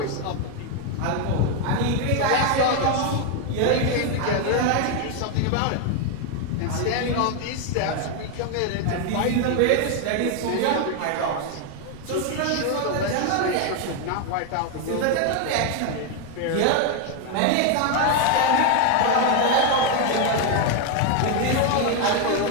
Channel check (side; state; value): both; different; correlation 0.01